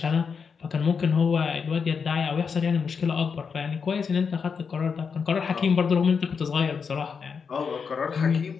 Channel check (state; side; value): quieter; right; 5.9 dB